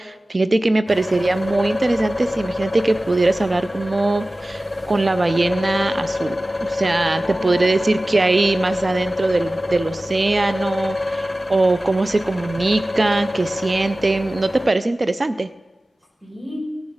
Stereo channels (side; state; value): both; normal; correlation 0.97